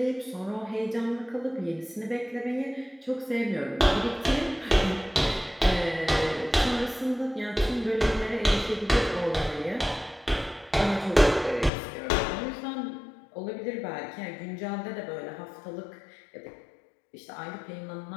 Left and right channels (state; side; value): drops out; right; at 11.7 s